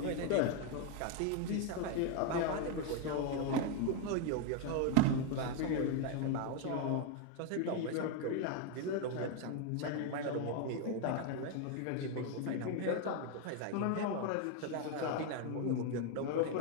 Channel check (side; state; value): both; different; correlation 0.01